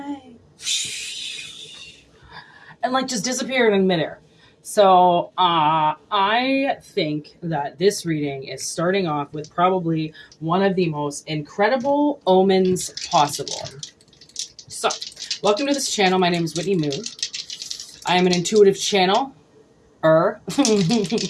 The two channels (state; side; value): identical; both; correlation 1.00